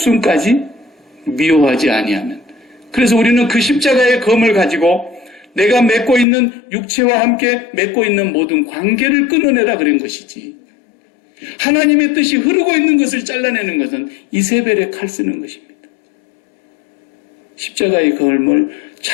미워하지 아니하면. 그래서 우리는 그 십자가의 검을 가지고 내가 맺고 있는 육체와 함께 맺고 있는 모든 관계를 끊어내라 그런 것이지. 하나님의 뜻이 흐르고 있는 것을 잘라내는 것은 이세벨의 칼 쓰는 것입니다. 십자가의 검을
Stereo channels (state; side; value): drops out; right; at 6.2 s